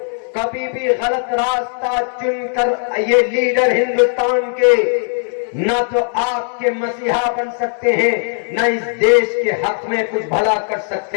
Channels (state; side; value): silent; right; 65 dB below the other